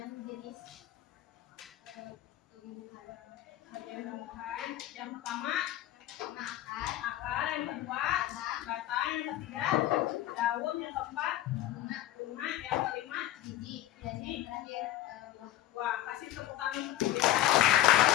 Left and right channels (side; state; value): right; quieter; 13.6 dB